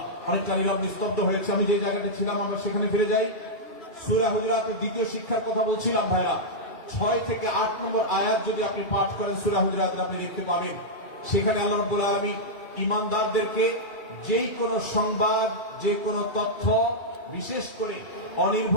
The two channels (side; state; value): right; late; 2.3 ms